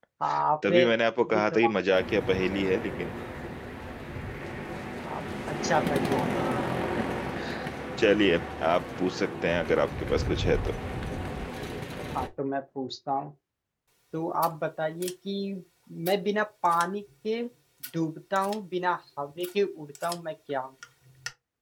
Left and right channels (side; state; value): both; identical; correlation 1.00